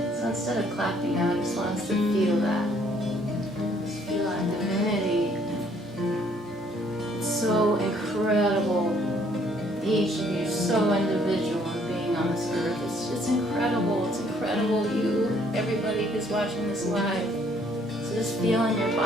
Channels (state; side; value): normal; both; correlation 0.64